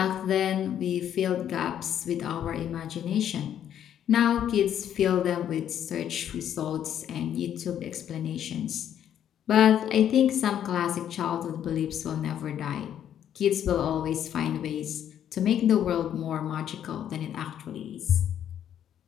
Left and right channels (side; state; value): right; quieter; 10.0 dB